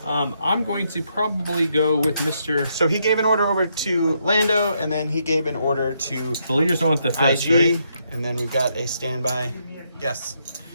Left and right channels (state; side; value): inverted; both; correlation -0.77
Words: I'm going to probably go with Mr. So he gave an order over to Lando, and then he gave an order to The leaders don't want the fist, IG, right? and then we've got a standby. Yes.